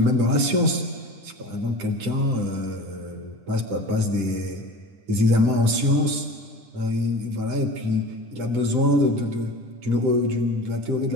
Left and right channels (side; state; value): left; late; 10 ms